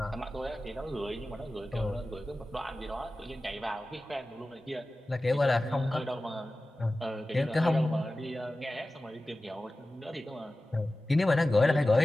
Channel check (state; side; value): normal; both; correlation 0.96